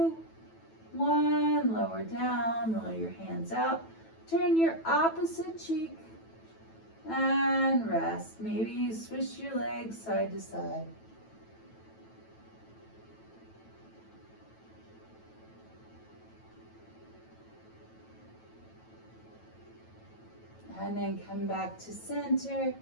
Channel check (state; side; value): late; right; 9.1 ms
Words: 1, lower down, roll your hands out. Turn your opposite cheek and rest. Maybe you swish your legs side to side. And then come back to center.